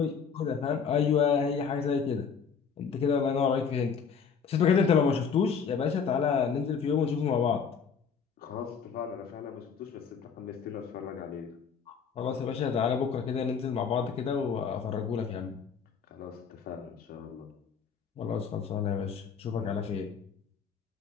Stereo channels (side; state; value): right; quieter; 6.3 dB